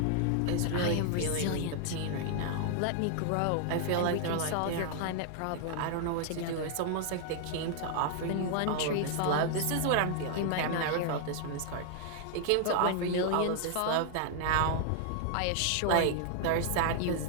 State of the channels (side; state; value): both; different; correlation 0.00